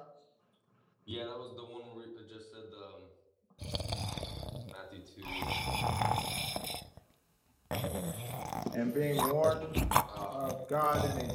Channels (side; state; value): both; identical; correlation 1.00